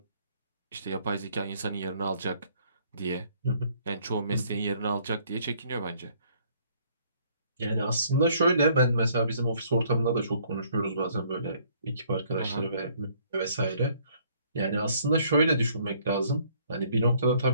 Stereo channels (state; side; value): inverted; both; correlation -0.62